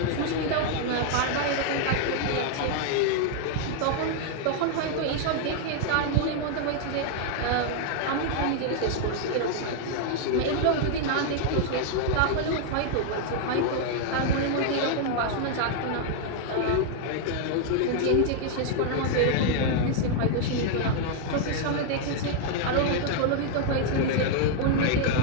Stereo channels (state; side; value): different; both; correlation 0.00